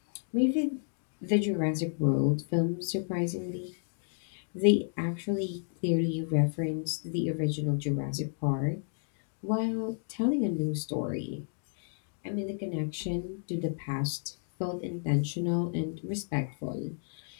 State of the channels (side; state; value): right; silent; 57 dB below the other